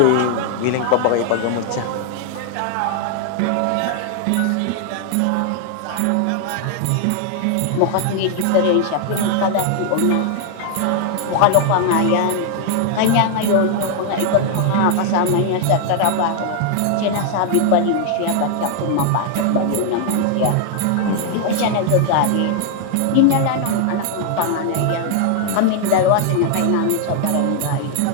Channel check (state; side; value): different; both; correlation 0.00